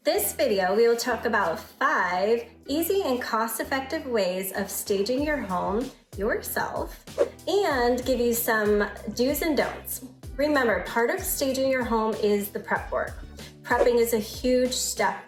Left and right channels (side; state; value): both; identical; correlation 1.00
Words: This video, we will talk about 5 easy and cost-effective ways of staging your home yourself and give you some do's and don'ts. Remember, part of staging your home is the prep work. Prepping is a huge step